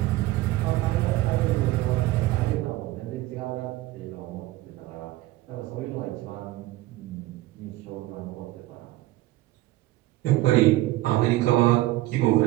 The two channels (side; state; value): left; quieter; 17.3 dB